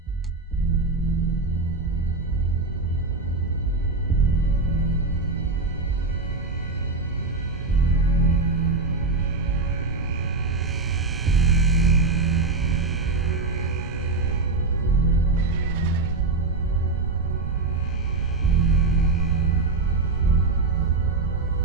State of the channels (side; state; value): left; quieter; 3.5 dB